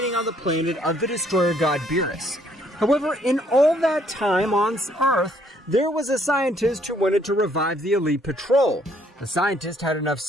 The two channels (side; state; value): both; normal; correlation 0.66